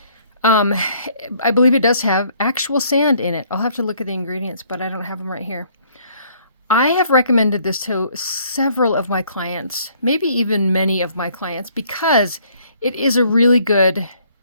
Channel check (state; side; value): inverted; both; correlation -0.63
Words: I believe it does have actual sand in it. I'll have to look at the ingredients, but I don't have them right here. I have recommended this to several of my clients, maybe even many of my clients, because it is a really good